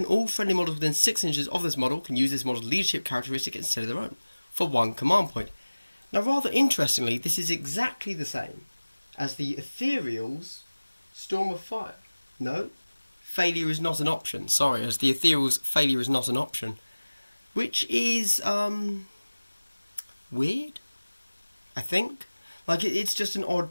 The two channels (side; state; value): both; inverted; correlation -1.00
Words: all friendly models within 6 inches of this model can use this model's leadership characteristic instead of their own, for 1 command point. Now, rather interestingly, this is exactly the same as the Ethereal's Storm of Fire. No, failure is not an option. Sorry, as the Ethereal's failure is not an option. Which is, weird, I think. Like, it's just an odd